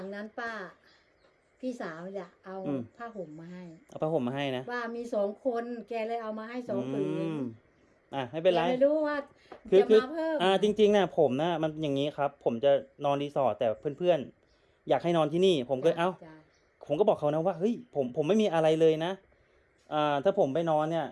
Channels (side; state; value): both; identical; correlation 1.00